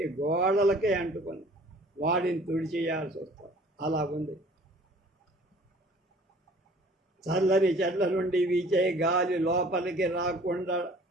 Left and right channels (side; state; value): both; normal; correlation 0.51